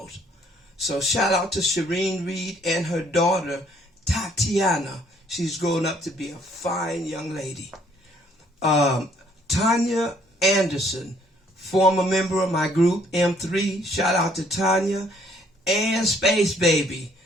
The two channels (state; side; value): normal; both; correlation 0.64